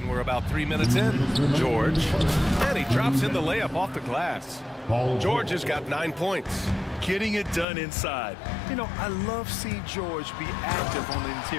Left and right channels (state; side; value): drops out; right; at 7.7 s